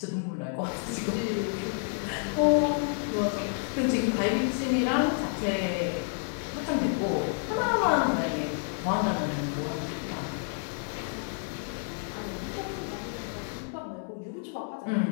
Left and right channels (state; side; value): silent; right; 58 dB below the other